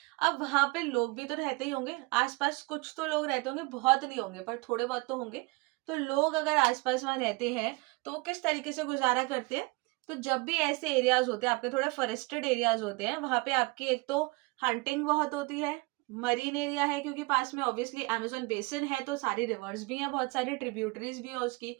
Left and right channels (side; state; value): left; quieter; 25.1 dB